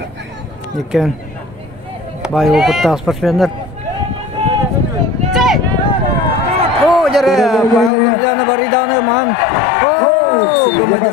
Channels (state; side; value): drops out; right; at 7.9 s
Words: Екен бай опытта спортсмендер. Jere Павел Друзьянов бариданы ман.